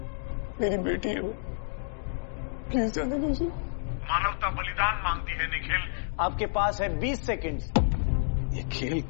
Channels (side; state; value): right; silent; digital silence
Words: मेरी बेटी है वो, प्लीज जाने दो उसे। मानवता बलिदान मांगती है निखिल। आपके पास है 20 सेकंड। ये खेल